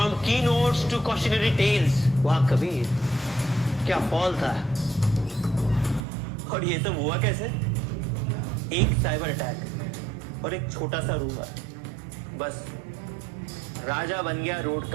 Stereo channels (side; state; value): left; drops out; at 6.0 s